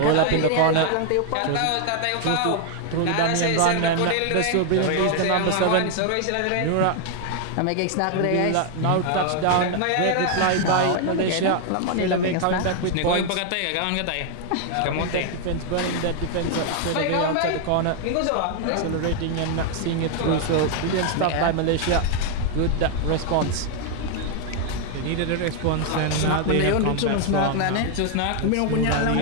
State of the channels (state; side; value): different; both; correlation 0.00